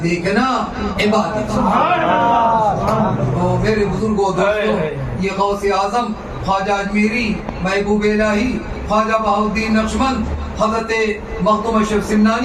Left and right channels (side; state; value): both; identical; correlation 1.00